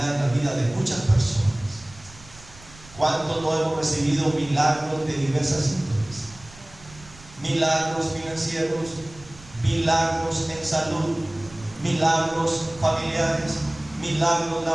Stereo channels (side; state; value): right; noise; rumble, 21 dB below the sound